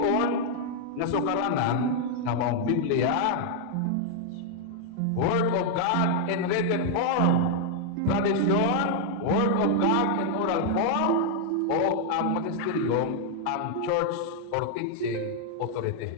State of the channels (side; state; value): both; different; correlation -0.01